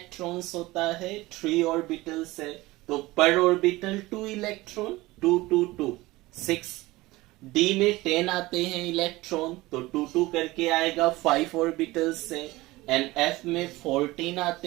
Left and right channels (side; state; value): left; quieter; 19.7 dB